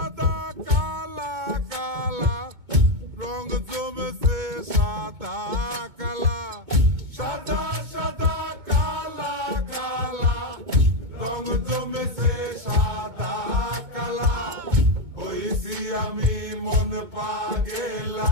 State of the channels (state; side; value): late; left; 2.2 ms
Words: কালা কালা রং জমেছে সাদা কালা, সাদা সাদা কালা কালা রং জমেছে সাদা কালা। হইছি আমি মন